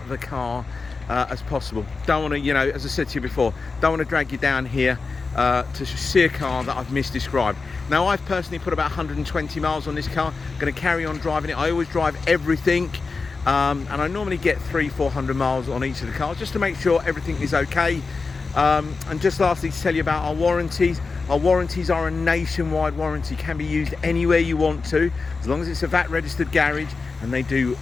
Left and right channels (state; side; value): quieter; right; 4.3 dB